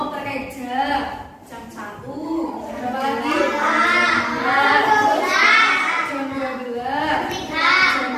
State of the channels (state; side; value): identical; both; correlation 1.00